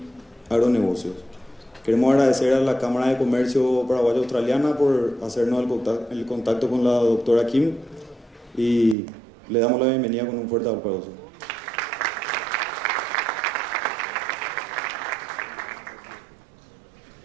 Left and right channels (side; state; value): left; drops out; at 9.0 s